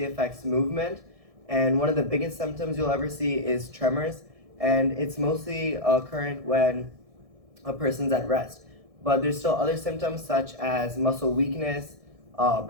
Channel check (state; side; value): late; left; 1.6 ms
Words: affects movement, and one of the biggest symptoms you'll ever see is tremors, and it's mostly occurrent when a person's at rest. But there's still other symptoms such as muscle weakness,